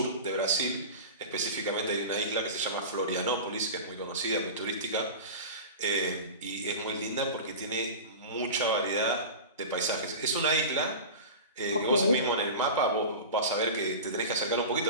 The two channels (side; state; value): both; inverted; correlation -0.30